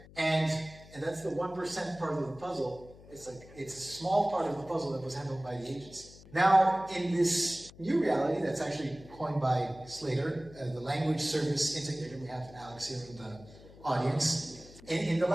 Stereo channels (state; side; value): noise; left; hum, 20 dB below the sound